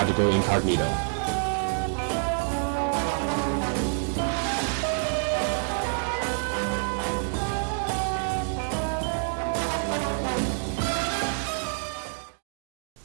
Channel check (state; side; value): silent; left; digital silence